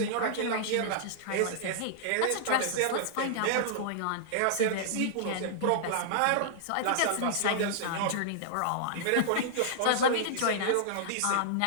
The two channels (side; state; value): both; different; correlation -0.02